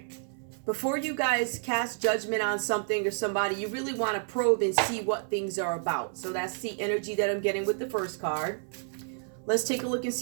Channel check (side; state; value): left; silent; 58 dB below the other